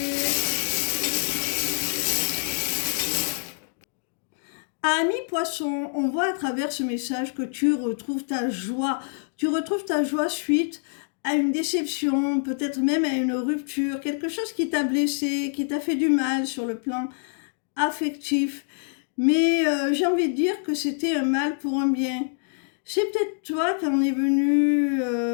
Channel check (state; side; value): silent; right; digital silence